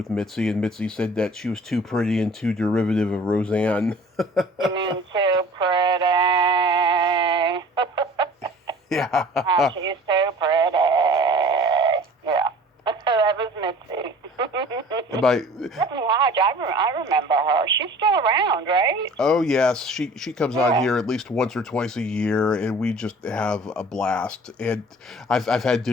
Mitzi, and Mitzi said that she was too pretty and too derivative of Roseanne. You mean too pretty? Yeah. She's too pretty. Yeah. That was Mitzi. Stephanie Hodge, I remember her. She's still around, right? Oh yes, she comes on here at least once or twice a year, and we just have a blast. And I've had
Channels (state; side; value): normal; both; correlation 0.46